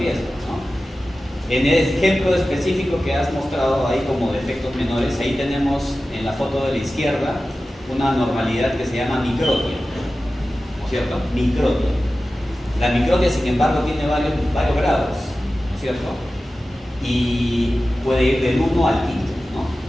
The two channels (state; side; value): normal; both; correlation 0.95